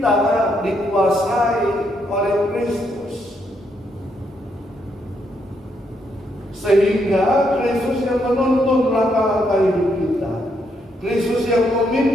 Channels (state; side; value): normal; both; correlation 0.76